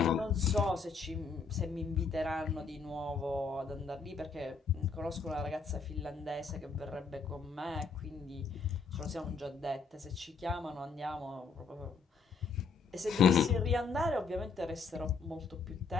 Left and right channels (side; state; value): right; quieter; 4.9 dB